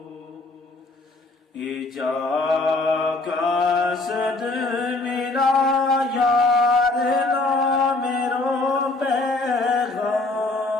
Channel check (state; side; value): quieter; right; 3.1 dB